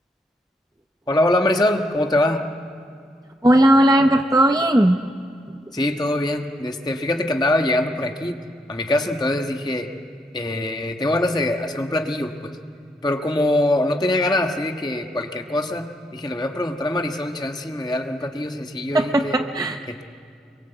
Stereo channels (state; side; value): normal; both; correlation 0.76